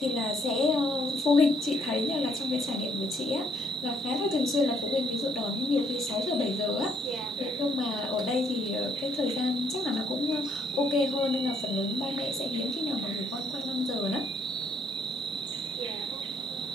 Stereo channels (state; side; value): normal; both; correlation 0.69